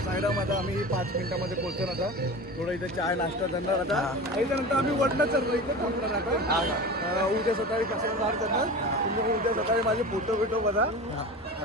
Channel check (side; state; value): both; normal; correlation 0.31